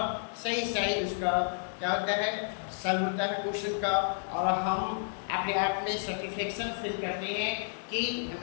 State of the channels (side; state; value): right; silent; 57 dB below the other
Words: सही उसका क्या होता है, सॉल्व होता है क्वेश्चन का, और हम अपने आप में सेटिस्फेक्शन फील करते हैं कि